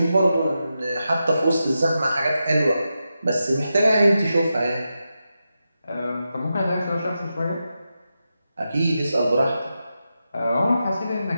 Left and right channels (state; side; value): inverted; both; correlation -0.89